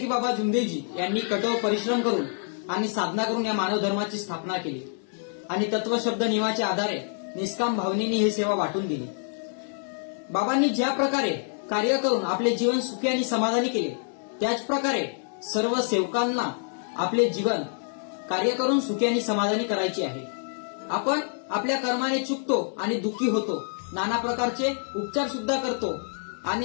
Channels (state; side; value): silent; right; 60 dB below the other